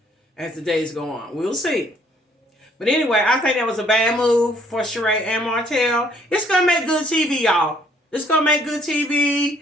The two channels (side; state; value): both; normal; correlation 0.64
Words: as the days go on. We'll see. But anyway, I think that was a bad move for Sharee and Martell. It's going to make good TV, y'all. It's going to make good